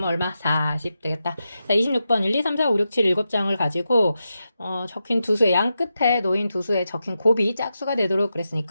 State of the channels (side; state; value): both; inverted; correlation -0.89